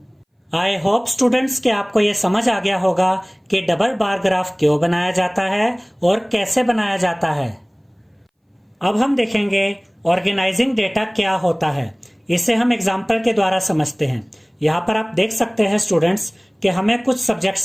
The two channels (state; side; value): identical; both; correlation 1.00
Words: आई होप स्टूडेंट्स कि आपको ये समझ आ गया होगा कि डबल बार ग्राफ क्यों बनाया जाता है और कैसे बनाया जाता है। अब हम देखेंगे ऑर्गेनाइजिंग डेटा क्या होता है। इसे हम एग्जाम्पल के द्वारा समझते हैं। यहाँ पर आप देख सकते हैं स्टूडेंट्स कि हमें कुछ